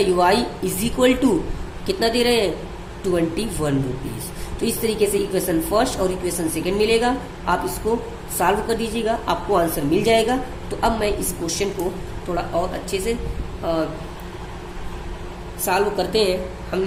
y is equal to कितना दे रहे हैं, 21 रुपीज़। तो इस तरीके से इक्वेशन फर्स्ट और इक्वेशन सेकंड मिलेगा, आप इसको सॉल्व कर दीजिएगा, आपको आंसर मिल जाएगा। तो अब मैं इस क्वेश्चन को थोड़ा और अच्छे से सॉल्व करते हैं हम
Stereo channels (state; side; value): identical; both; correlation 1.00